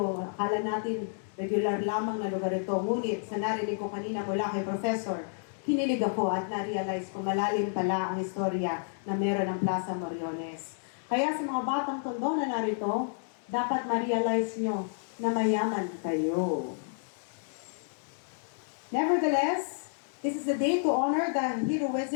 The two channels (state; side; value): silent; right; digital silence